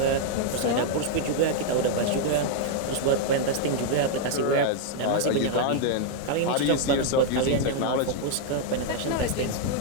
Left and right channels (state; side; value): different; both; correlation -0.01